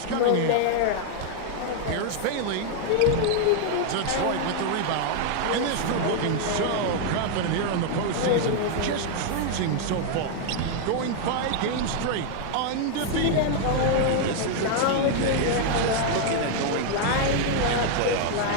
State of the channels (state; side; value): different; both; correlation 0.00